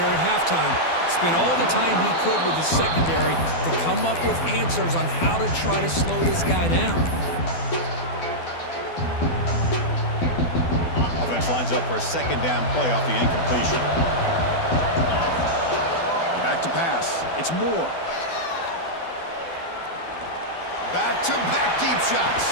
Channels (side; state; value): right; late; 12 ms